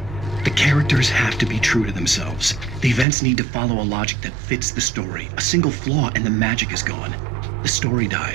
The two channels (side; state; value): left; drops out; at 3.1 s